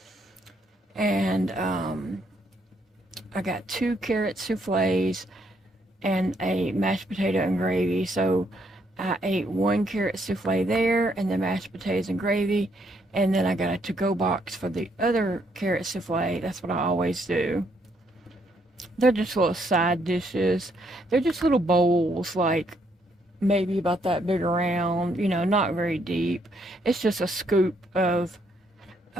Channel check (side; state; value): both; normal; correlation 0.72